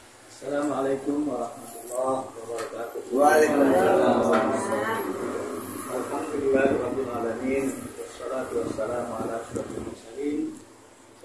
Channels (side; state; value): both; identical; correlation 1.00